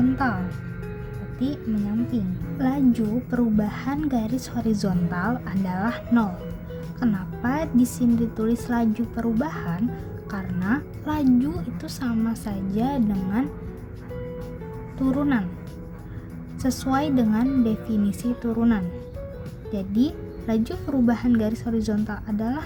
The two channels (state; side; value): identical; both; correlation 1.00